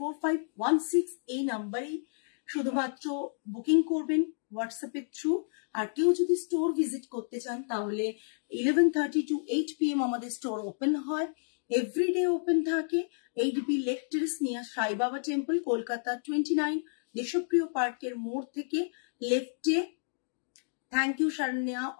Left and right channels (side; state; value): right; silent; digital silence